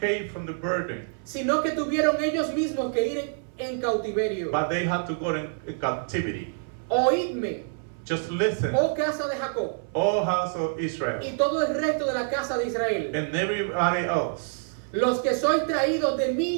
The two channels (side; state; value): left; silent; 60 dB below the other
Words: from the burden, sino que tuvieron ellos mismos que ir en cautiverio. but they had to go in captivity. Oídme, Just listen, oh casa de Jacob, all house of Israel y todo el resto de la casa de Israel, and everybody else. los que sois traídos de